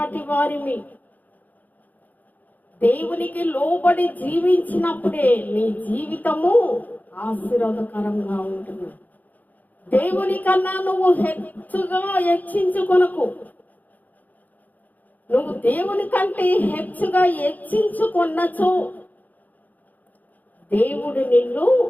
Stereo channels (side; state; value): right; late; 0.081 ms